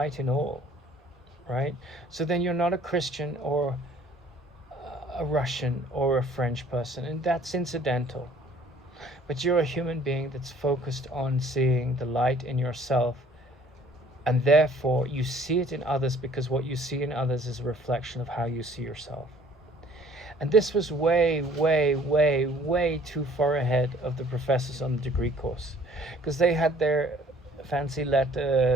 in all, right? So then you're not a Christian or a Russian or a French person, and that's incidental. But you're a human being that's focused on seeing the light in yourself, and therefore you see it in others, because what you see in others is a reflection of how you see yourself. And this was way, way, way, way too far ahead of the professors on the degree course, because they had their fancy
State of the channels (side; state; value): both; normal; correlation 0.56